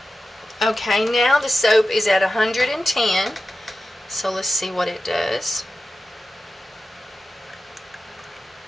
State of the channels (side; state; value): both; normal; correlation 0.93